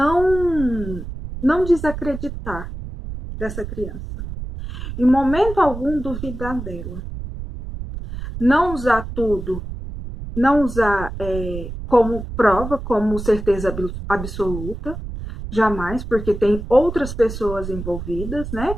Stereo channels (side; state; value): right; noise; rumble, 8 dB below the sound